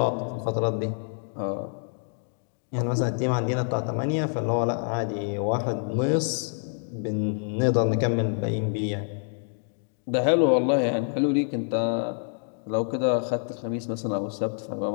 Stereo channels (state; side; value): silent; right; digital silence